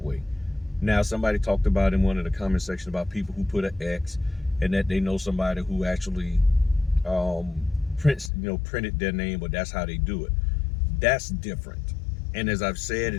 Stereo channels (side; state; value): right; drops out; at 8.3 s